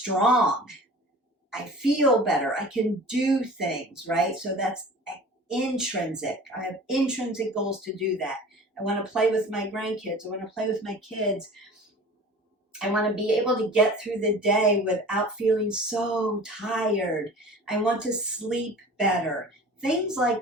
I feel better, I can do things, right? So that's intrinsic. I have intrinsic goals to do that. I want to play with my grandkids, I want to play with my kids. I want to be able to get through the day without feeling so tired. I want to sleep better. Things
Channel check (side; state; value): both; normal; correlation 0.41